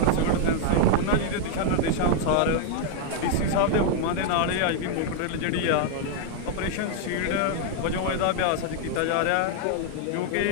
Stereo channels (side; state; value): both; different; correlation 0.00